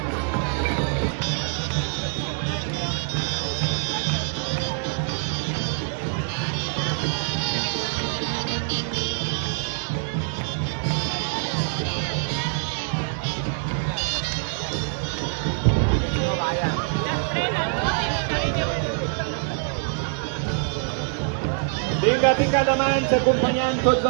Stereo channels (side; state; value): left; silent; 60 dB below the other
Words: Vinga, pica de mans, acompanyant tots